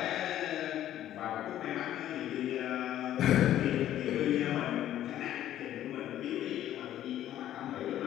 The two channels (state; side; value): quieter; right; 12.2 dB